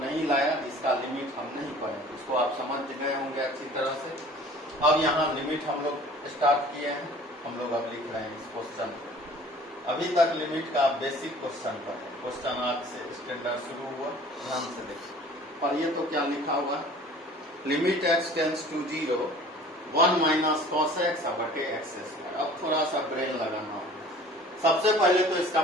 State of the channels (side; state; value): both; normal; correlation 0.47